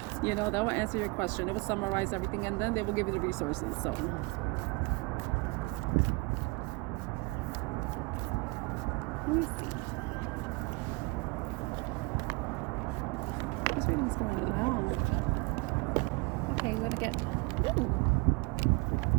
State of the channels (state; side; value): quieter; left; 26.9 dB